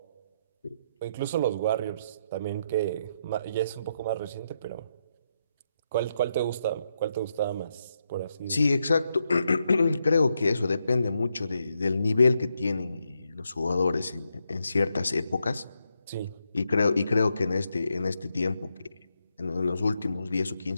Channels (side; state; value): both; inverted; correlation -0.82